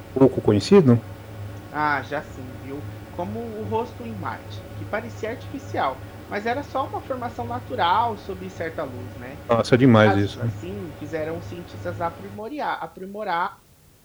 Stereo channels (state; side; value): identical; both; correlation 1.00